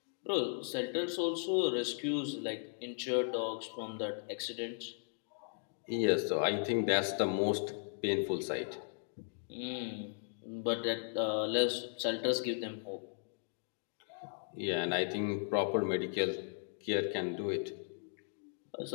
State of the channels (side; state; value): right; silent; digital silence